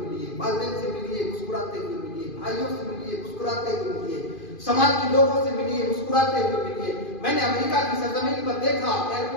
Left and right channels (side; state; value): right; late; 2.5 ms